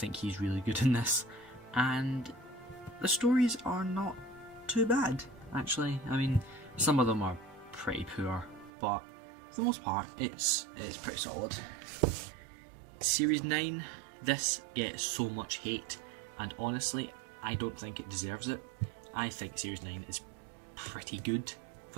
he's really good in this, and the stories are not too bad, actually. I mean, some of them are pretty poor, but for the most part, it's pretty solid. Series 9, this gets so much hate, and honestly, I don't think it deserves it. I think Series 9 is pretty good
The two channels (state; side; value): drops out; left; at 8.7 s